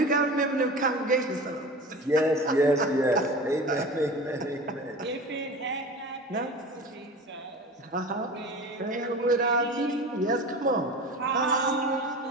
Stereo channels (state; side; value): normal; both; correlation 0.34